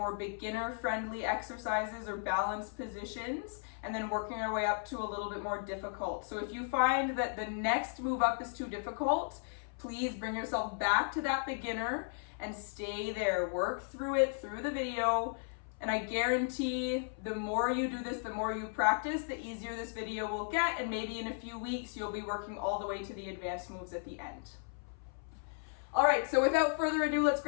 beginner-friendly exercises or balanced positions, and then working our way up to a little bit more difficult. So if you find that the next move up is too difficult, please bring yourself back to that beginner and stay there. Work through it through the video, and I guarantee the more you do this, the more you practice, the easier this video will get, and maybe in a few weeks you'll be working all the way to the advanced moves at the end. All right, so without further ado, let's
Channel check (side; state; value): right; silent; 54 dB below the other